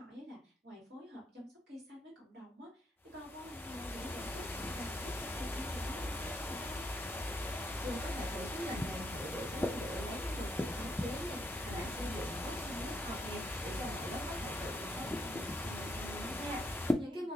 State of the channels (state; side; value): normal; both; correlation 0.76